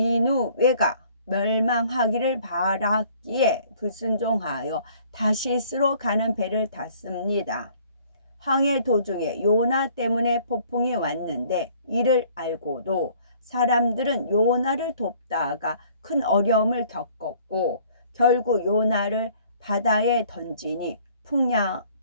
멸망하기를 바랐기에 불순종하여 다시스로 가는 배를 탔습니다. 항해 도중에 요나 때문에 폭풍이 왔는데 이를 알고도 사람들은 요나를 돕다가 큰 어려움을 겪었고 결국 요나를 바다에 던지니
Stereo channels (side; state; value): both; inverted; correlation -0.57